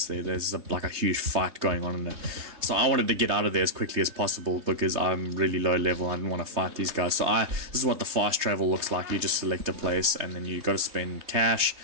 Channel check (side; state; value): left; late; 3.3 ms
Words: there's like a huge fight going on in there. So I wanted to get out of there as quickly as possible because I'm really low level. I didn't want to fight these guys. So this is what the fast travel looks like. You just select a place, and then you got to spend cash,